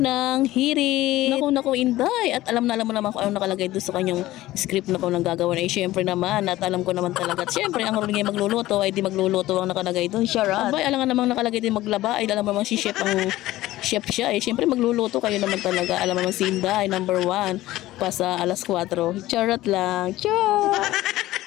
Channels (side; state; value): right; quieter; 16.4 dB